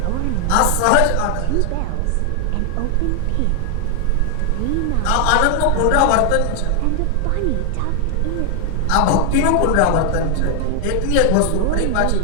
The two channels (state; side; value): different; both; correlation 0.00